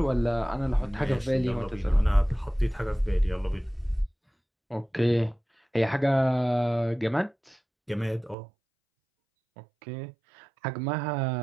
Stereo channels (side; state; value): left; drops out; at 8.3 s